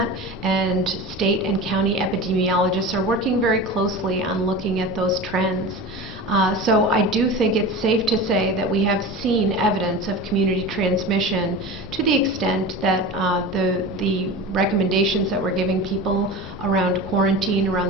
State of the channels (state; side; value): noise; left; rumble, 18 dB below the sound